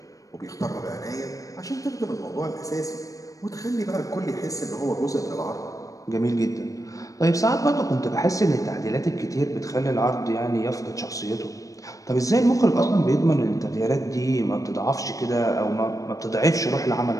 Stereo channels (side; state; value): right; late; 0.16 ms